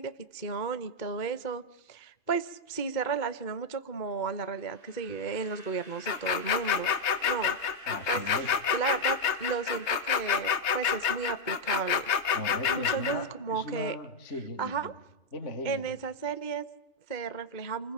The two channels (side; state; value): right; late; 3.2 ms